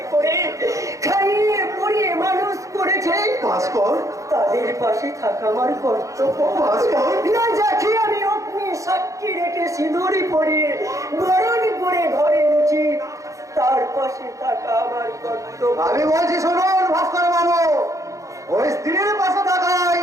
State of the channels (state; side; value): late; left; 0.15 ms